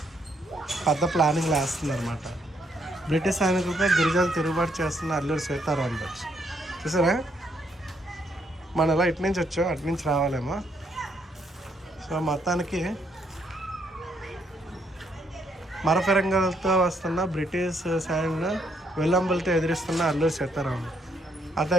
పెద్ద ప్లానింగ్ వేస్తుందన్నమాట. బ్రిటిష్ సైనికులపై గిరిజనులు తిరుగుబాటు చేస్తున్న అల్లూరి సీతారామరాజు. చూసారా, మనం ఎలా ఇటు నుంచి వచ్చాం అటు నుంచి రావాలేమో. సో మొత్తానికి మరఫిరంగులతో వస్తున్న బ్రిటిష్ సైన్యం విల్లంబులతో ఎదిరిస్తున్న అల్లూరి సీతారామరాజు. అదే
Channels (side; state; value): both; normal; correlation 0.72